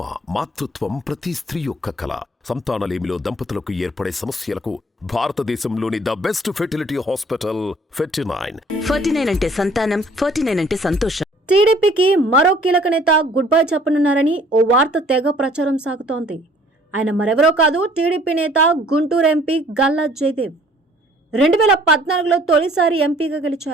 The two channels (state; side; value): normal; both; correlation 0.56